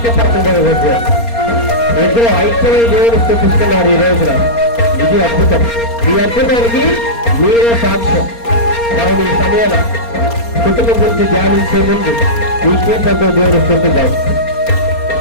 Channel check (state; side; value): late; right; 4.3 ms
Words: ఇద్దరు ఐక్యమై దేవుడు స్థుతిస్తున్నారు ఈ రోజున. ఇది అద్భుతం. ఈ అద్భుతానికి మీరే సాక్ష్యం. కావున ఈ సమయాన కుటుంబం గురించి ధ్యానించే ముందు ఈ కీర్తనతో దేవుడు స్థుతిద్దాం.